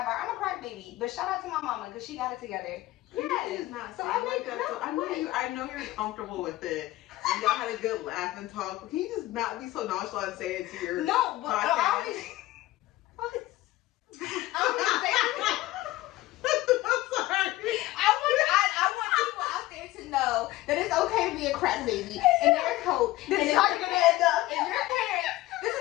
I'm a crack baby. But shout out to my mama, because she got it together. Yes. Yes. Not So, saying like that. So I know you're comfortable with it. And y'all had a good laugh and talk. Can you just not be so nonchalant and say it to your No, but podcast? I always say it. I'm sorry. I want people out there to know that it's okay to be a crack baby. And there's hope. this And is if how you're gonna end up. your parents, this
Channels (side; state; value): right; quieter; 17.4 dB